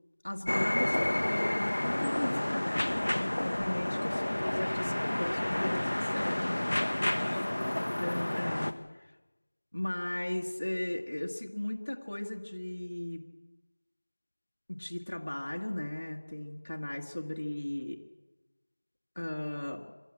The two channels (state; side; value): inverted; both; correlation -1.00